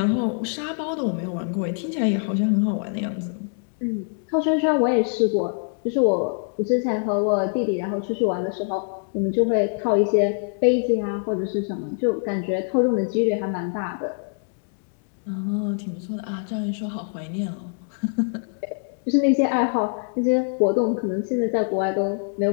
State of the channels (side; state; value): right; silent; 62 dB below the other